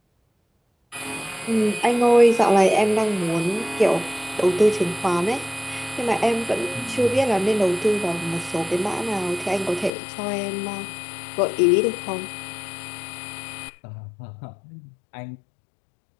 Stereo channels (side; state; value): right; drops out; at 9.9 s